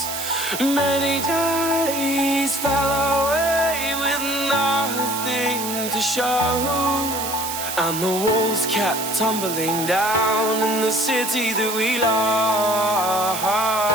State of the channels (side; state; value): right; noise; hiss, 5 dB below the sound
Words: Many days fell away with nothing to show, and the walls kept tumbling down in the city that we love.